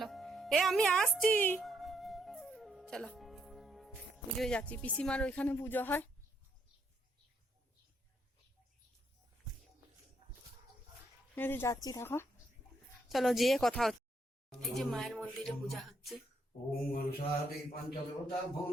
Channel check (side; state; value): both; normal; correlation 0.75